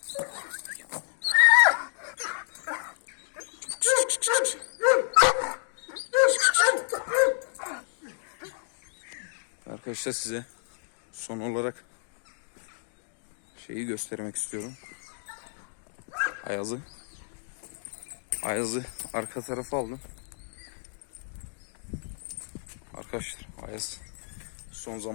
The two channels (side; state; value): right; silent; digital silence